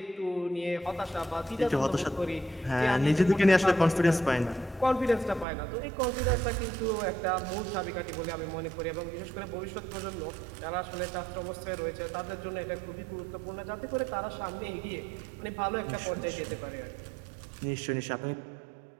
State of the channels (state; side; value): drops out; left; at 5.5 s